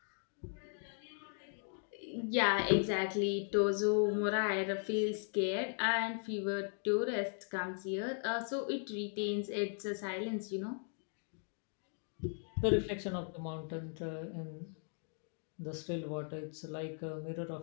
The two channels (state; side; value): silent; right; 52 dB below the other